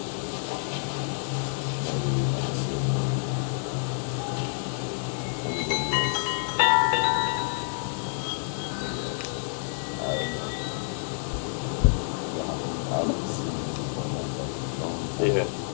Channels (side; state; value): right; silent; digital silence